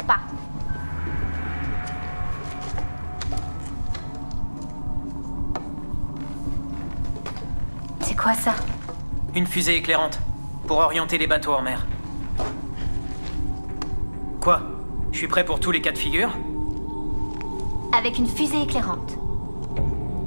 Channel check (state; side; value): inverted; both; correlation -1.00